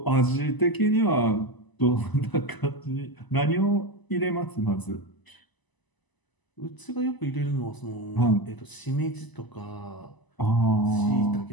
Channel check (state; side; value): late; right; 1.0 ms